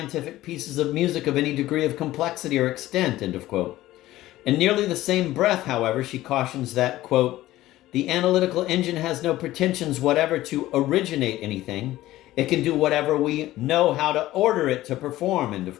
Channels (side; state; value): right; quieter; 15.8 dB